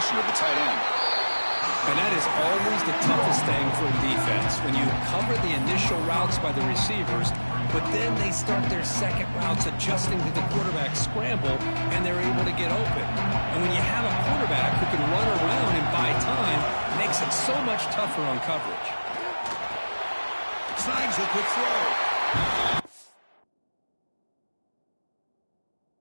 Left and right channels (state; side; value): inverted; both; correlation -1.00